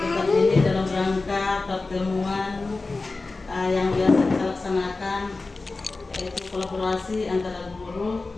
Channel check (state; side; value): quieter; right; 3.6 dB